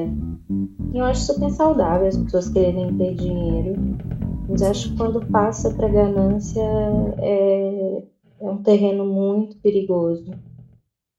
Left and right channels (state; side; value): identical; both; correlation 1.00